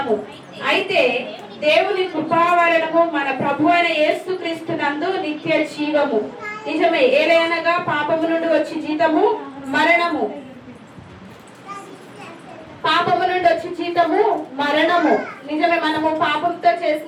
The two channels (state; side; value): identical; both; correlation 1.00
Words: అయితే దేవుని కృపా వలనము మన ప్రభు అయిన యేసుక్రీస్తు నందు నిత్య జీవము. నిజమే, ఏలయనగా పాపము నుండి వచ్చి జీతము మరణము, పాపము నుండి వచ్చి జీతము మరణము. నిజమే, మనము పాపంతో